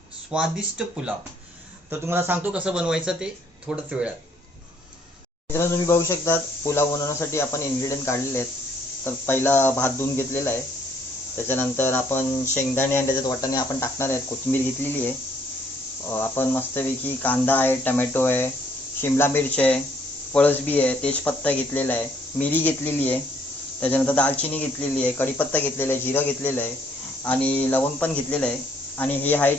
स्वादिष्ट पुलाव. तर तुम्हाला सांगतो कसं बनवायचं ते थोडंच वेळात. मित्रांनो, तुम्ही बघू शकता पुलाव बनवण्यासाठी आपण इन्ग्रेडियंट काढलेले आहेत. तर पहिला भात धुवून घेतलेला आहे. त्याच्यानंतर आपण शेंगदाणे आणि त्याच्यात वाटाणे आपण टाकणार आहेत. कोथिंबीर घेतलेली आहे. आपण मस्तपैकी कांदा आहे, टमॅटो आहे, शिमला मिरची आहे, पळसबी आहे, तेजपत्ता घेतलेला आहे, मिरी घेतलेली आहे, त्याच्यानंतर दालचिनी घेतलेली आहे, कढीपत्ता घेतलेला आहे, जिरं घेतलेलं आहे आणि लवंग पण घेतलेलं आहे. आणि हे आहे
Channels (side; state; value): both; normal; correlation 0.66